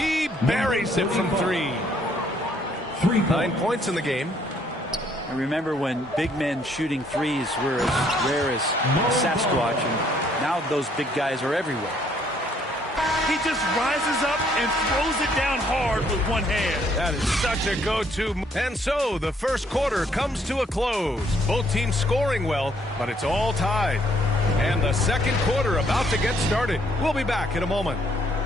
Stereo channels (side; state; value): both; normal; correlation 0.66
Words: buries it from 3. 9 points in the game. I remember when big men shooting threes were as rare as Sasquatch, and now those big guys are everywhere. He just rises up and throws it down hard with one hand. That is such a go-to. And so the first quarter comes to a close. Both teams scoring well, but it's all tied. And the second quarter about to get started. We'll be back in a moment.